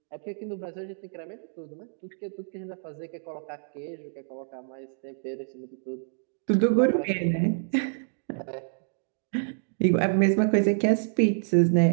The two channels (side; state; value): left; silent; digital silence